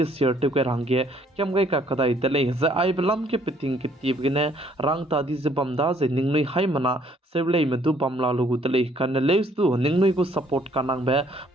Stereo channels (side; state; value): both; normal; correlation 0.63